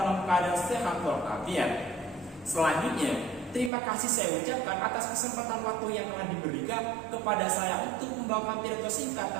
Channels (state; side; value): drops out; left; at 3.7 s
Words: keadaan sehat walafiat. Selanjutnya, terima kasih saya ucapkan atas kesempatan waktu yang telah diberikan kepada saya untuk membawakan pidato singkat